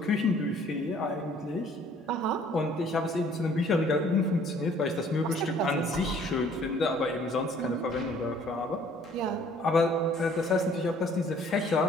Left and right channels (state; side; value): normal; both; correlation 0.57